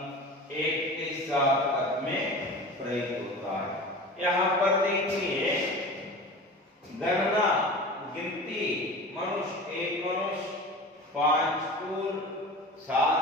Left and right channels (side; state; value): both; normal; correlation 0.35